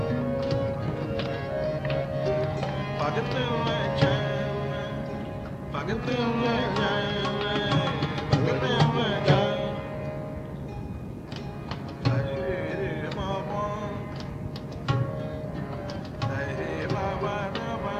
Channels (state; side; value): identical; both; correlation 1.00